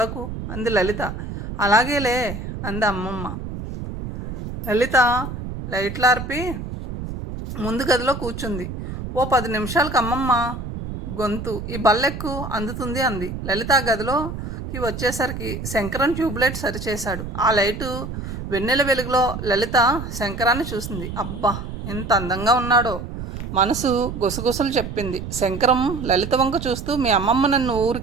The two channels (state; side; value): noise; right; rumble, 7 dB below the sound